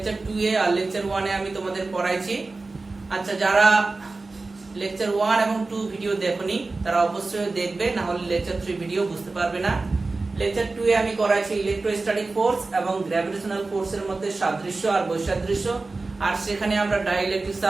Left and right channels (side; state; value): left; quieter; 3.5 dB